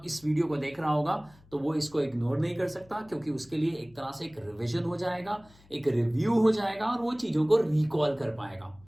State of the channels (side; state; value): left; noise; hum, 27 dB below the sound